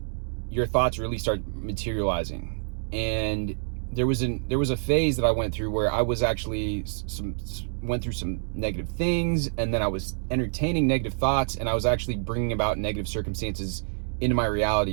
your thoughts really start materializing. And there was a phase that I went through where I was actually went through some negative things, and then I was entertaining negative thoughts, and I was actually bringing about negative circumstances into my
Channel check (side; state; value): left; silent; digital silence